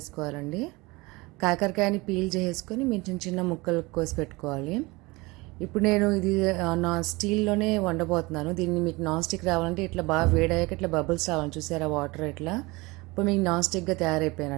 కాకరకాయని పీల్ చేసుకొని మీరు చిన్న చిన్న ముక్కలు కోసి పెట్టుకోవాలి. ఇప్పుడు నేను ఇది స్టీల్లోనే వండబోతున్నాను. దీన్ని మీకు నాన్ స్టిక్ రావాలంటే ఇట్లా బాగా వేడయ్యాక ఇట్లా బబుల్స్ రావాలి, చూసారా వాటర్ ఇట్లా. ఇప్పుడు మీకు నాన్ స్టిక్గా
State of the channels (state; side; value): quieter; left; 23.6 dB